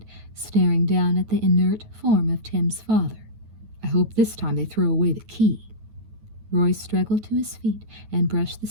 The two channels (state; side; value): late; left; 9.4 ms